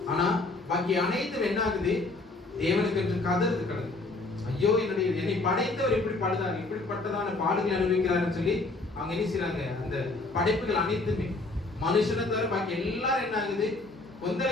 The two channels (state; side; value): quieter; right; 3.2 dB